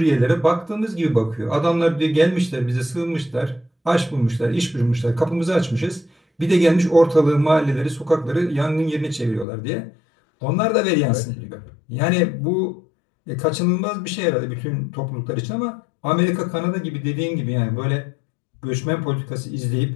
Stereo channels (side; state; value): right; drops out; at 9.5 s